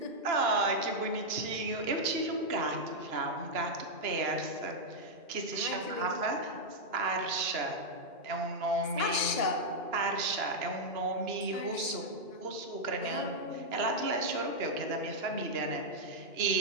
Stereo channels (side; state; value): left; late; 2.9 ms